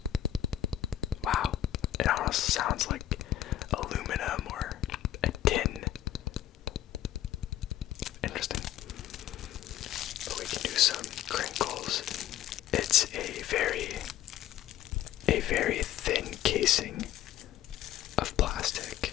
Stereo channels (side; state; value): right; quieter; 12.1 dB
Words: Wow, it almost sounds like aluminum or a tin. Interesting. But we can do some crinkles. It's a very thin casing of plastic,